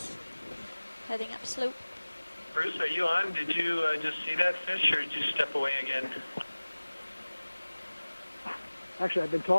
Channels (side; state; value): both; inverted; correlation -1.00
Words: Heading up slope. Bruce, are you on? Did you just see that fish, or did you step away again? Actually, I've been